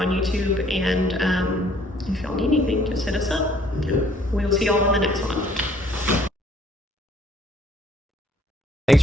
YouTube, and if y'all need anything, just hit us up. Good. We'll see y'all in the next one. Thanks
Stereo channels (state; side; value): normal; both; correlation 0.60